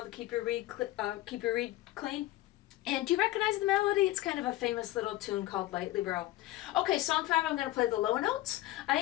to keep your reed clean. And do you recognize the melody? It's kind of a famous little tune called Lightly Row. Okay, song 5, I'm going to play the low notes. I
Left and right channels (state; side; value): quieter; right; 16.6 dB